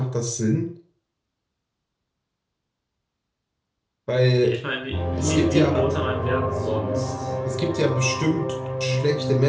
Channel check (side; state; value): both; identical; correlation 1.00